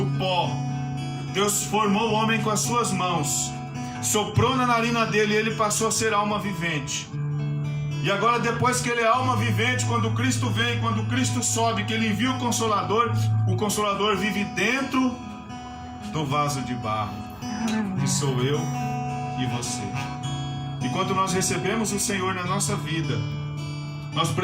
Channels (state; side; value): identical; both; correlation 1.00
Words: pó. Deus formou o homem com as suas mãos, soprou na narina dele e ele passou a ser alma vivente. E agora, depois que ele é alma vivente, quando Cristo vem, quando Cristo sobe, que ele envia o Consolador vive dentro do vaso de barro, que sou eu e você. E quando nós recebemos o Senhor na nossa vida, nós